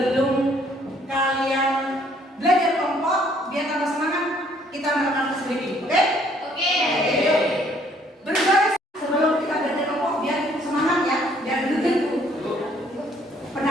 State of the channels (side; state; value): both; normal; correlation 0.63